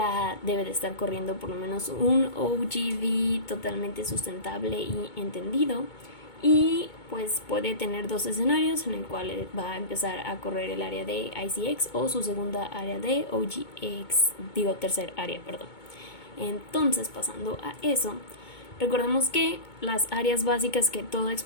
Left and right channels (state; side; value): late; right; 2.2 ms